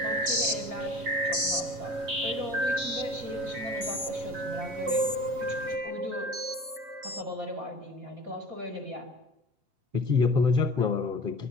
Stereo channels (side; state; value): left; late; 7.1 ms